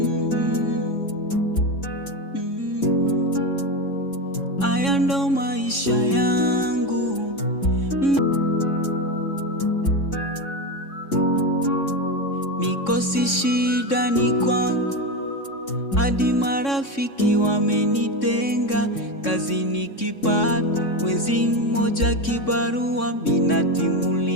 Haya ndo maisha yangu. Mikosi shida ni kwangu. Hadi marafiki wamenitenga. Kazi nikipata mwezi mmoja kibarua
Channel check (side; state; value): right; late; 3.6 ms